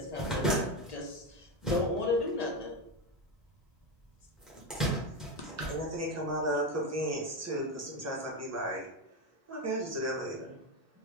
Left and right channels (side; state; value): both; normal; correlation 0.13